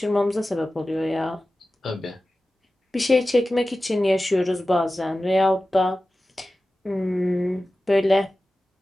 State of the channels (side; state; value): both; normal; correlation 0.95